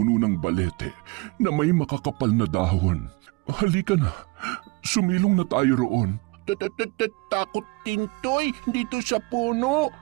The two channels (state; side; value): quieter; left; 26.0 dB